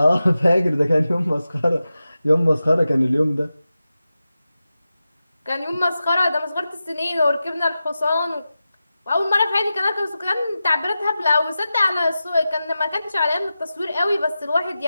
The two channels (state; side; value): inverted; both; correlation -0.93